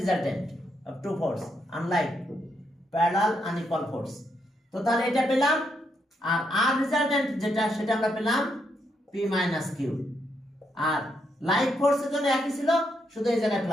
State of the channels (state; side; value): normal; both; correlation 0.78